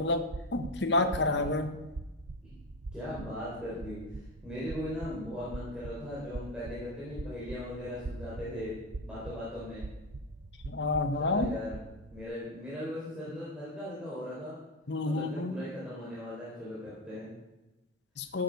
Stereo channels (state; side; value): normal; both; correlation 0.14